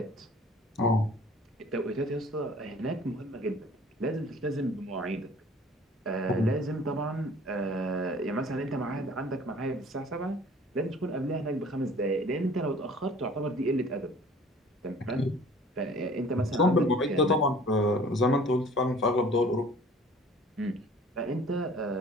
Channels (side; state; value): both; normal; correlation 0.50